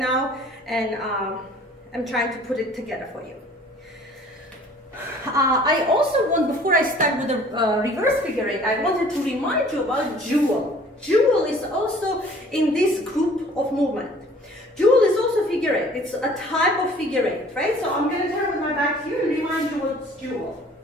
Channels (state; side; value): normal; both; correlation 0.52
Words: and I'm trying to put it together for you. I also want, before I start with the reverse figure eight, I wanted to remind you about jewel. Jewel is also in this group of movement. Jewel is also figure eight. It's a type of figure eight, right? So I'm going to turn with my back here and remind you what's jewel.